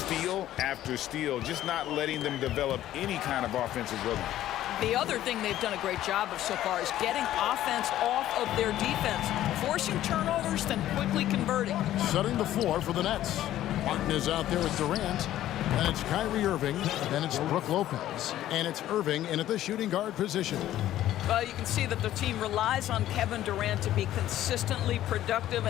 after steal, just not letting them develop any kind of offensive rhythm. The other thing they've done a great job of so far is getting offense off of their defense, forcing turnovers, then quickly converting. Setting the floor for the Nets. Martin is out there with Durant, and it's Kyrie Irving, then it's Brook Lopez, and it's Irving in at the shooting guard position. Well, you can see that the team relies on Kevin Durant to be consistently productive,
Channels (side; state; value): right; quieter; 13.2 dB